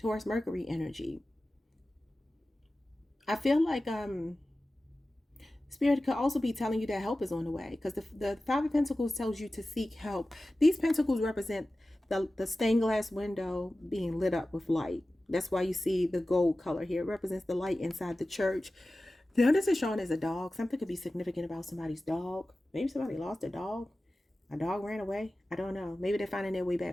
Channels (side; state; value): both; normal; correlation 0.95